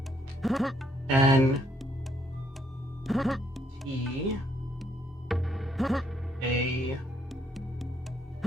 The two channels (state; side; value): normal; both; correlation 0.71